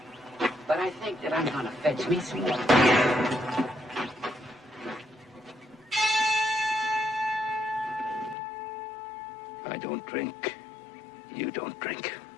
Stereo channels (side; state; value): right; drops out; at 8.3 s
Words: But I think that I'm gonna fetch me some water. I don't drink. You don't drink.